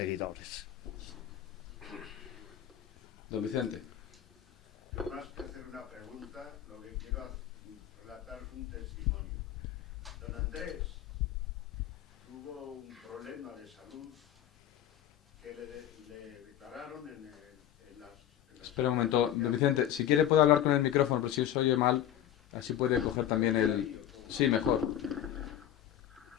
Don Vicente. Yo más que hacer una pregunta, lo que quiero es relatar un testimonio. Don Andrés tuvo un problema de salud que le declararon en las... Espera un momento, don Vicente, si quiere puede hablar con el micrófono, pero si se oye mal, así puede coger también el... Sí, mejor.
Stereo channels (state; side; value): quieter; right; 11.1 dB